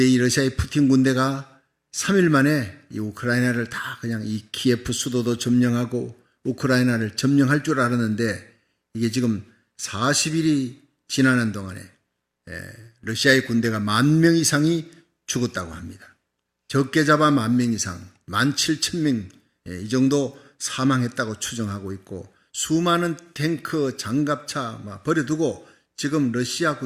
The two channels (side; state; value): both; identical; correlation 1.00